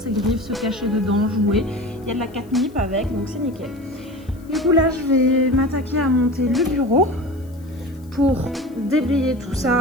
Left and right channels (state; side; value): noise; left; hiss, 29 dB below the sound